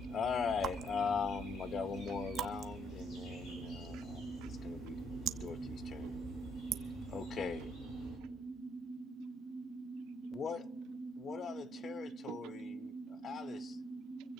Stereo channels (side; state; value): both; normal; correlation 0.73